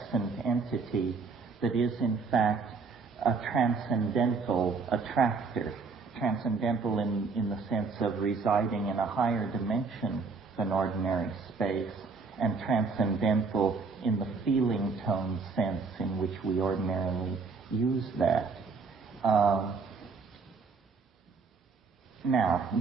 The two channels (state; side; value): quieter; left; 4.6 dB